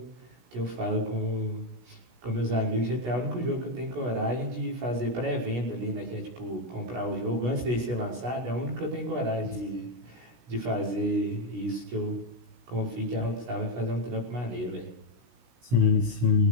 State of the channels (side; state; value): left; late; 16 ms